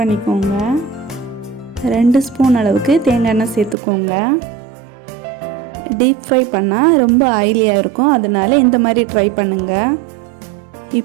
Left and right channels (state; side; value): drops out; left; at 3.8 s